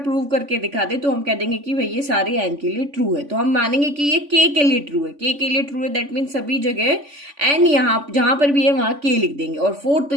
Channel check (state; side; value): late; left; 3.5 ms